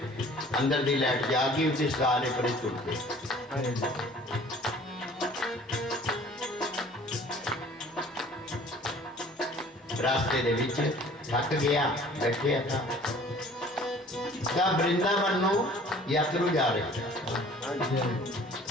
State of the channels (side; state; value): both; normal; correlation 0.50